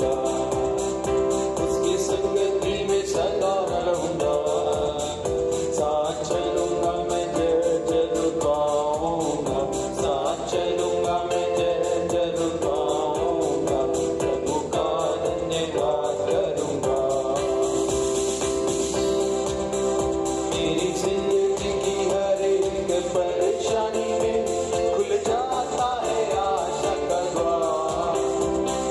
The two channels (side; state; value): both; identical; correlation 1.00